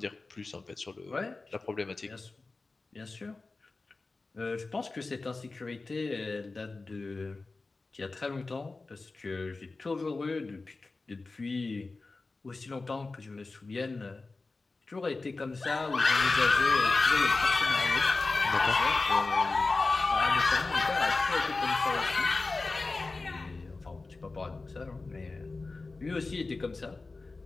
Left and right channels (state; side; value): quieter; right; 3.6 dB